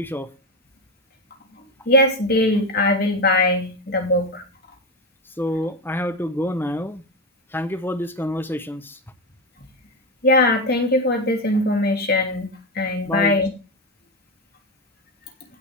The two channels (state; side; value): normal; both; correlation 0.14